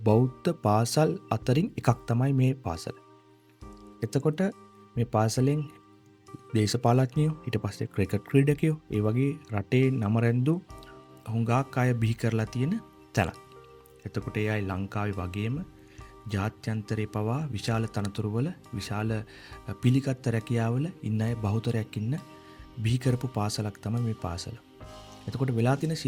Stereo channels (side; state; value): both; identical; correlation 1.00